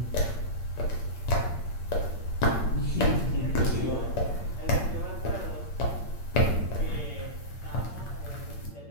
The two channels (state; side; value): late; right; 8.7 ms